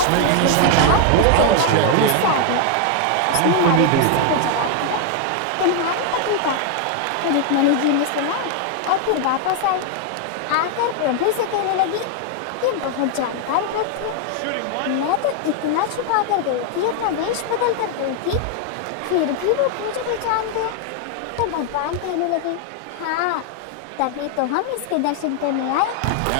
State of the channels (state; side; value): different; both; correlation 0.00